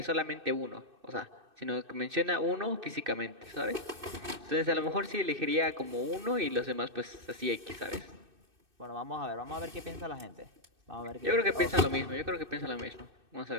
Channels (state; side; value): late; left; 2.6 ms